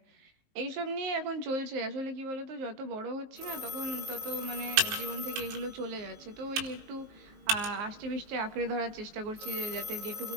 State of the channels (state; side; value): late; left; 19 ms